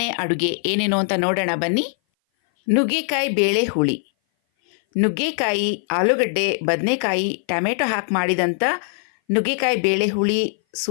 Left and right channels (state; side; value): silent; right; 59 dB below the other